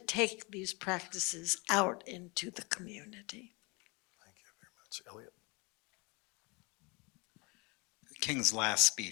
these practices out into the community. Thank you very much. Elliot? King's last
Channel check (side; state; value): right; quieter; 28.6 dB